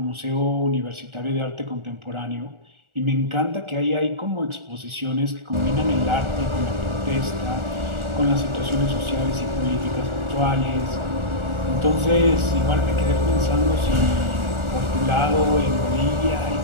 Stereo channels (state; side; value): late; left; 1.4 ms